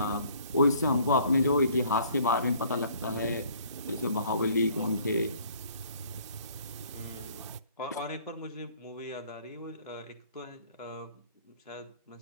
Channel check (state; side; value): inverted; both; correlation -0.58